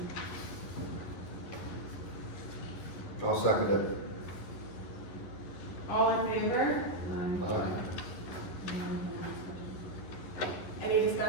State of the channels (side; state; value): right; late; 11 ms